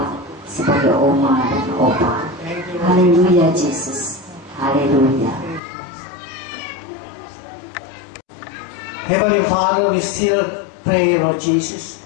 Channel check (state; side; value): drops out; right; at 5.6 s